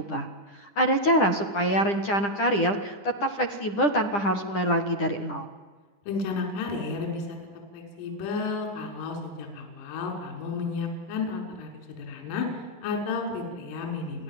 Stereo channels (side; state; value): right; late; 10 ms